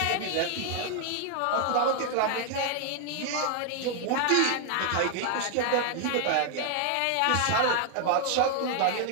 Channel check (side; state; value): both; different; correlation 0.00